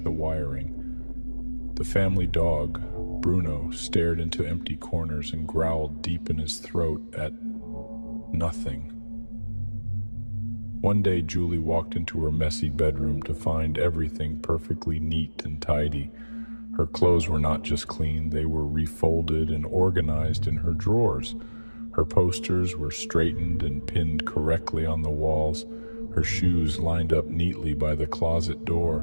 the wiring. The family dog, Bruno, stared into empty corners and growled deep in his throat at nothing. One day, Julie walked into her messy bedroom to find everything perfectly neat and tidy. Her clothes were not just clean, they were refolded and organized in her drawers. Her posters were straightened and pinned correctly on the walls. Her shoes lined up neatly by the closet door,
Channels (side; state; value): both; inverted; correlation -1.00